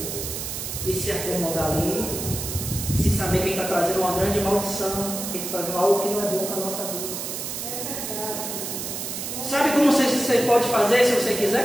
E se acomodar ali sem saber que ele está trazendo uma grande maldição, que ele está trazendo algo que não é bom para a nossa vida. Sabe como você pode fazer se você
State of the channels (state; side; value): noise; right; hiss, 5 dB below the sound